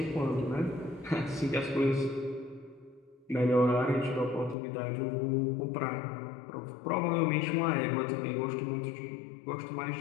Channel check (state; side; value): drops out; right; at 4.5 s